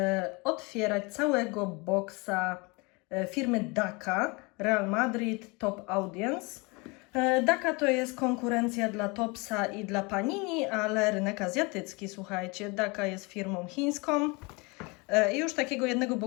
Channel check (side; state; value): right; quieter; 27.8 dB